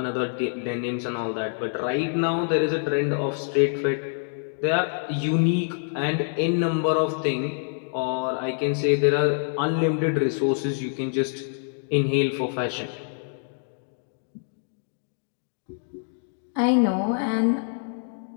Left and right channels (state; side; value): silent; right; digital silence